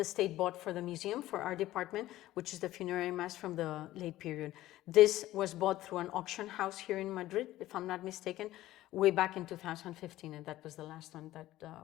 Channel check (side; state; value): right; quieter; 15.3 dB